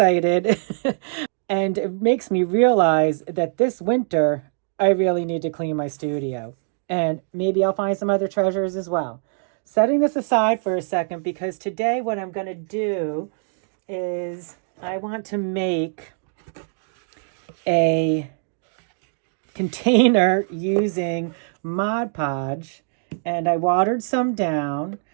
And it makes me realize that this winter, I really need to clean my studio. And maybe I'll find some other treasures as well. Setting this aside for a second, because today what I'm going to do is I want to make a container using Mod Podge, and I watered some down.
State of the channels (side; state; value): left; silent; digital silence